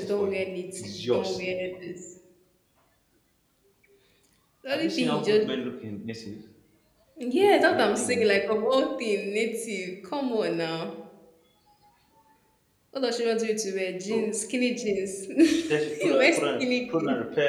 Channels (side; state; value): both; identical; correlation 1.00